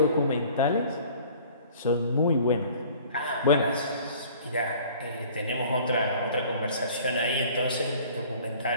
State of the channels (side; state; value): both; inverted; correlation -0.50